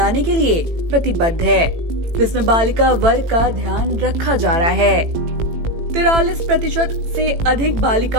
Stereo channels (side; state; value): left; late; 18 ms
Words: के लिए प्रतिबद्ध है, जिसमें बालिका वर्ग का ध्यान रखा जा रहा है। 43% से अधिक